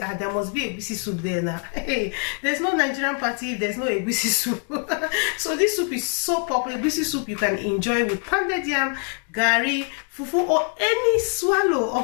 must be Egusi soup there now. Hey, there's no Nigerian party if there's no Egusi soup. So this soup is so popular. Egusi soup you can enjoy with pounded yam, gari, fufu, or any swallow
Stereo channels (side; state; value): right; quieter; 39.4 dB